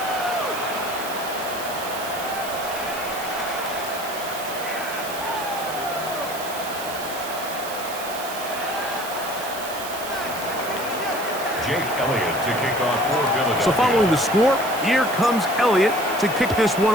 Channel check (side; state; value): right; noise; hiss, 11 dB below the sound